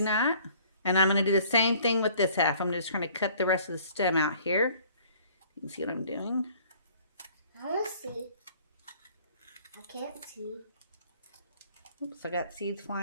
not? And I'm going to do the same thing with this half. I'm just going to cut the rest of the stem out here. You can see what I'm doing. I want to see. I can't see. Oops, I got seeds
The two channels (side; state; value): both; inverted; correlation -0.56